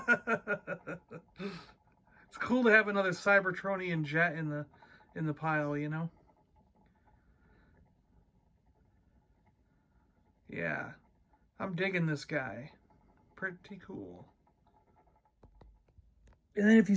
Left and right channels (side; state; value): both; identical; correlation 1.00